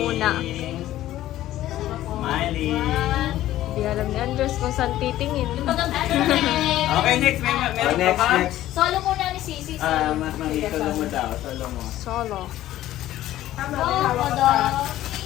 Smiling. Hindi alam ni Andres kung saan titingin. Okay, next. Meron pa ba? Solo muna ni Sisi. Solo mo daw. Solo mo. Solo. Wow, daw.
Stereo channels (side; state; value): right; quieter; 14.1 dB